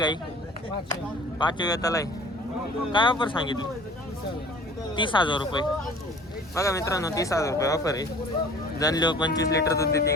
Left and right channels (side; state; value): both; normal; correlation 0.47